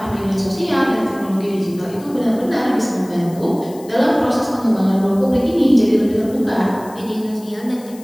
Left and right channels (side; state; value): left; noise; hiss, 22 dB below the sound